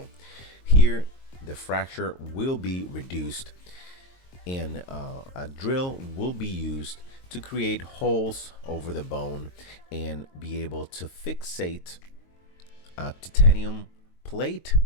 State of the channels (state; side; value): late; right; 22 ms